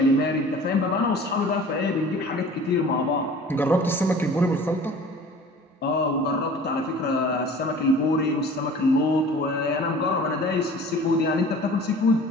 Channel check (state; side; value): normal; both; correlation 0.45